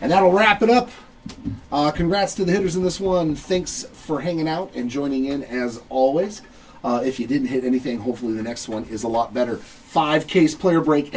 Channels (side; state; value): both; identical; correlation 1.00